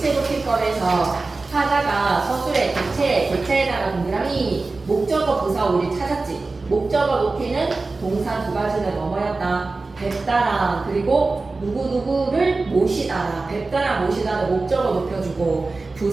높임법에서 타자가 서술의 객체에다가 동그라미 목적어 부사 우리 찾았지. 목적어 높이는 동사 두 가지는 뭐뭐였다? 뵙다랑 그리고 누구누구를 모시다라. 뵙다랑 모시다는 목적어 높여주고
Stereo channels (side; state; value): left; quieter; 3.6 dB